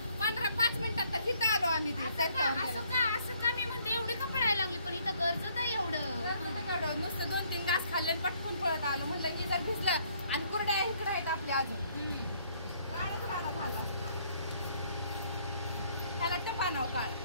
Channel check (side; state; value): both; inverted; correlation -0.65